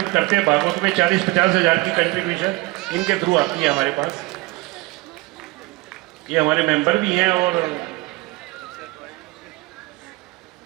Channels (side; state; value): left; quieter; 22.7 dB